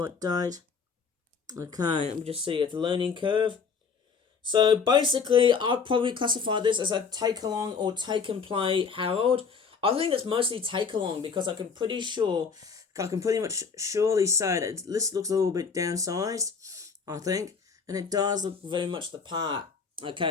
date. Okay, let me just see. It's a learning curve. So basically, I'd probably classify this as a take-along or take-and-play Harold. I think it's mostly take-along, because I can pretty much surely say that this looks a little bit downsized, I think. And it does look very much the part. Okay,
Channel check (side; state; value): right; quieter; 5.5 dB